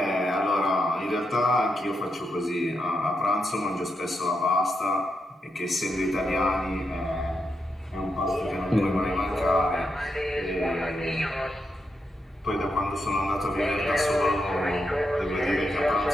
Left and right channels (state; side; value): normal; both; correlation 0.84